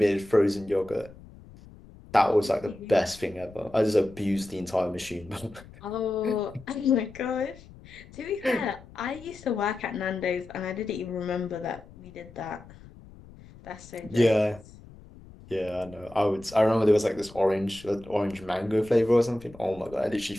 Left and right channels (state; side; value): noise; left; rumble, 20 dB below the sound